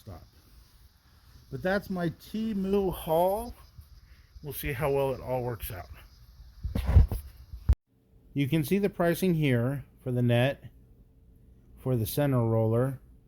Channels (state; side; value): identical; both; correlation 1.00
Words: But that's my TEMU haul. We'll see how well it all works out. You can see the pricing here for the net, for the center roller,